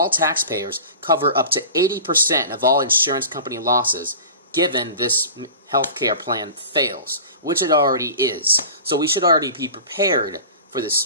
taxpayers cover up to 80% of all insurance company losses given this health care plan fails, which it already is. So we should already be prepared for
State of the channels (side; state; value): both; inverted; correlation -0.37